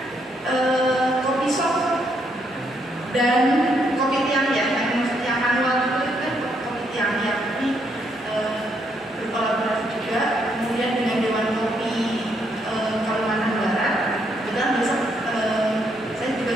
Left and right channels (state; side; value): normal; both; correlation 0.74